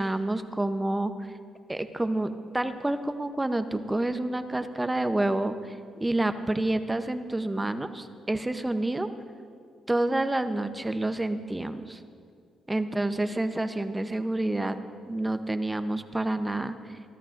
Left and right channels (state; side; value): normal; both; correlation 0.97